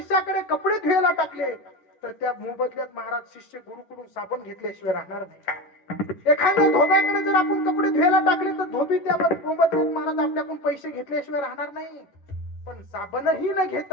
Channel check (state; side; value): late; right; 11 ms